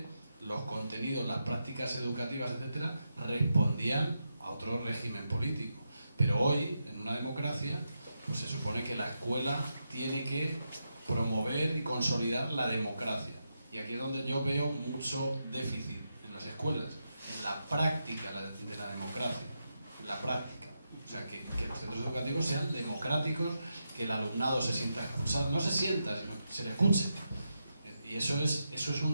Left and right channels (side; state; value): both; inverted; correlation -0.86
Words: los contenidos, las prácticas educativas, etcétera, respondían a otro régimen político. Pero hoy, en una democracia, pues se supone que la escuela tiene que promover y consolidar la democracia. Y aquí es donde yo veo mucho déficit en las escuelas, en la práctica de la democracia, en la práctica. O sea, que los centros educativos sean democráticos, que el alumnado se sienta escuchado, no se sienta, sino que se le escuche. Y eso es